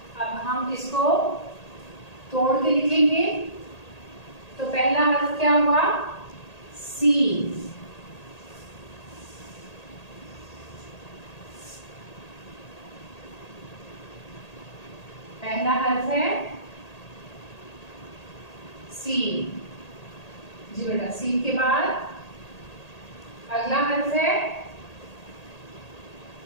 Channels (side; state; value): right; late; 1.8 ms